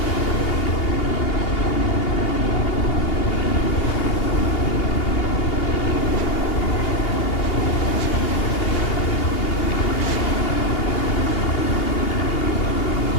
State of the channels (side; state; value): right; late; 2.8 ms